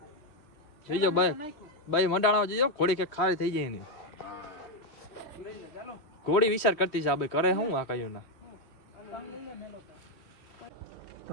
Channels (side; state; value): right; late; 3.1 ms